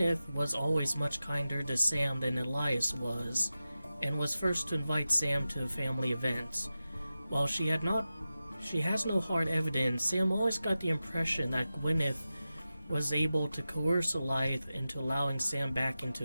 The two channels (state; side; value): inverted; both; correlation -0.94